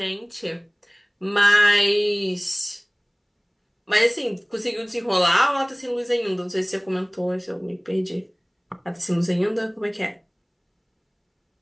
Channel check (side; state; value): both; identical; correlation 1.00